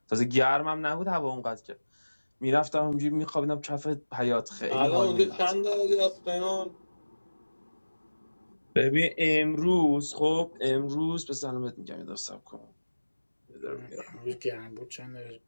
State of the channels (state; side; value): inverted; both; correlation -1.00